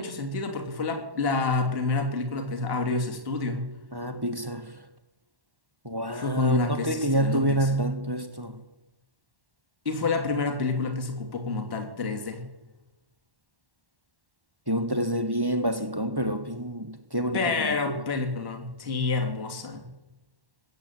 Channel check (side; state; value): left; late; 1.1 ms